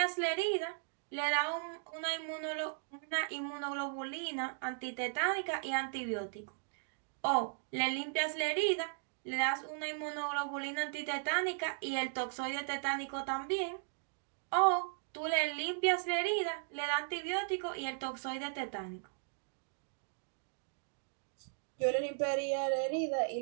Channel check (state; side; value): silent; left; digital silence